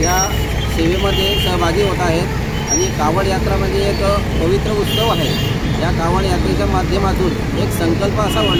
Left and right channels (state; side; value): identical; both; correlation 1.00